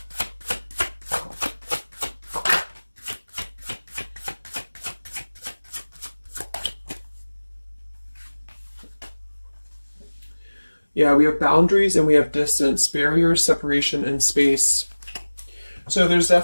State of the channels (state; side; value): inverted; both; correlation -1.00